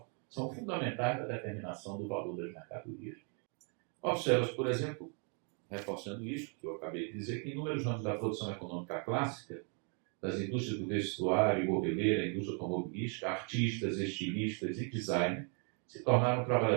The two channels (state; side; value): quieter; left; 39.5 dB